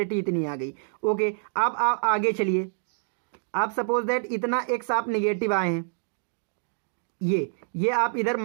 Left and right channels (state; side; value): silent; left; digital silence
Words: इतनी आ गई। ओके, अब आप आगे चलिए, आप सपोज दैट इतना x आप निगेटिव आए हैं, ये आप इधर